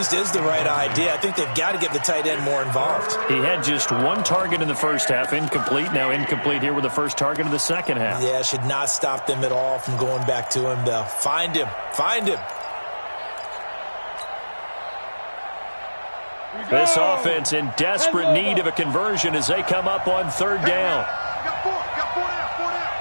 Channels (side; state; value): both; inverted; correlation -1.00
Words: is the right idea. I think they've got to get the tight end more involved. He had just one target in the first half, incomplete. Now incomplete here with the first target of the second half. Yeah, should not stop them at all from going back to him, though. Find him. This offense in desperate need of a conversion as they come up on third down. Got four down, four down.